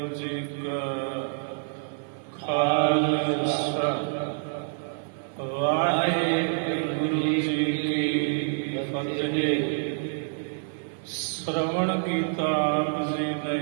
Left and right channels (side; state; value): left; silent; 60 dB below the other